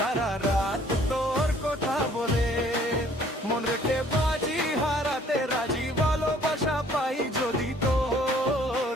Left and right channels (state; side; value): normal; both; correlation 0.58